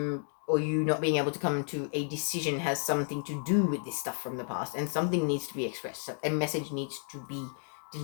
or you not being able to come to a decision has something to do with this stuff from the past, and something needs to be expressed. So a message needs to be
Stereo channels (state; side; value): silent; right; 57 dB below the other